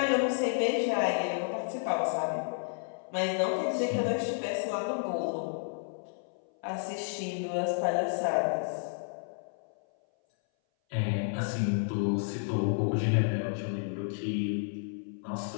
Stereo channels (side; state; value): right; silent; 57 dB below the other